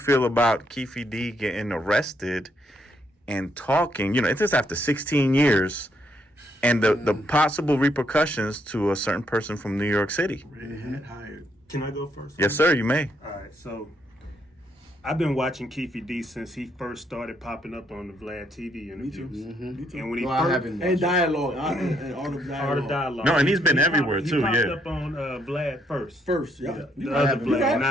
about Keefe D getting arrested and talking? You know, it's just after 16 years, and the possible repercussions to a certain person from New York City. Waynehead hired. Can I go first? Yes, sir. You may. All right, so I've been watching Keefe D since he first started popping up on the VLAD TV interviews. Me too. And when he No, I first, haven't And watched it. dialogue. And all the Art of dialogue. Dialogue. No, and he's been He everywhere, popped- too, He popped yeah. up on VLAD first. First, yeah. The other haven't. VLAD,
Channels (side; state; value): both; normal; correlation 0.73